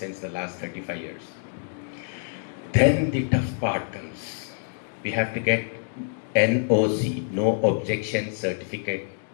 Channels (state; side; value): silent; right; digital silence